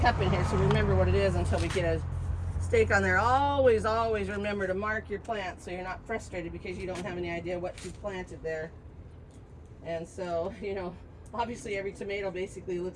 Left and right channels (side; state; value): both; identical; correlation 1.00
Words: cup in here so remember what it is until we get a stake on there. Always remember to mark your plants so you're not frustrated because you don't have any idea what you planted there. And so, you know, obviously every tomato basically